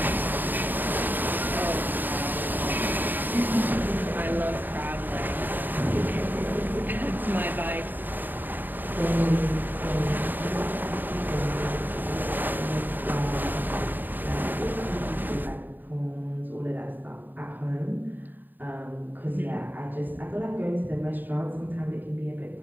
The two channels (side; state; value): left; late; 0.090 ms